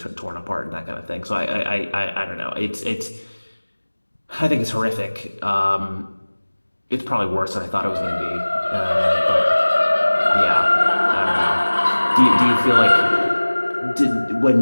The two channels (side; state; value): both; inverted; correlation -1.00